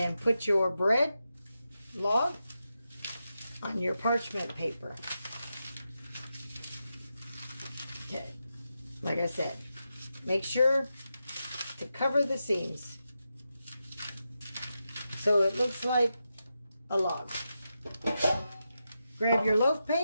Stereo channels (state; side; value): inverted; both; correlation -0.88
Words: put your bread log on your parchment paper. Okay. Like I said, make sure to cover the seams so it looks like a log. Grab your loaf